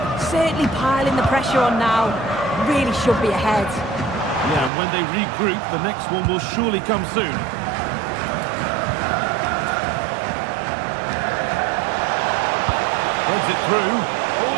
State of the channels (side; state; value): left; drops out; at 4.7 s